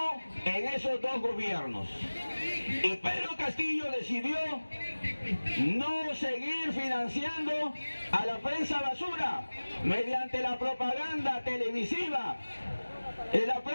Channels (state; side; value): inverted; both; correlation -1.00